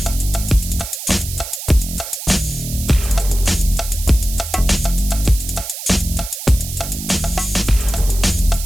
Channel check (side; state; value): right; noise; hiss, 9 dB below the sound